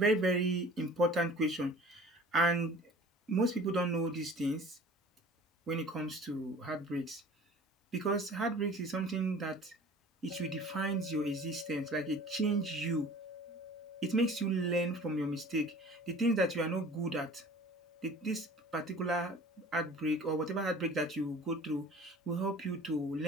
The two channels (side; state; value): both; normal; correlation 0.45